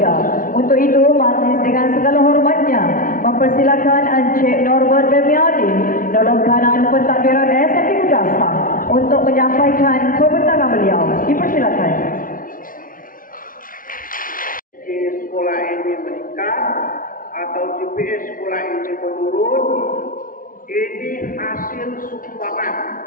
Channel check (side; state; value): right; late; 0.40 ms